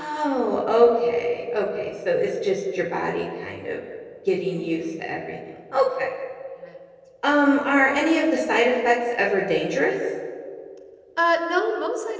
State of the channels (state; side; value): identical; both; correlation 1.00